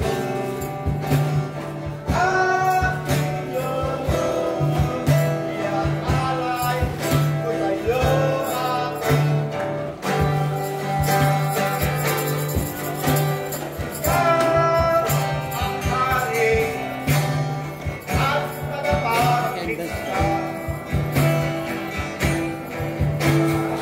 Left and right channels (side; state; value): both; identical; correlation 1.00